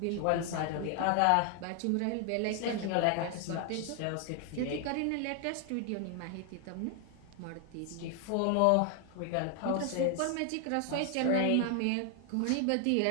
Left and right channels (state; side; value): different; both; correlation 0.00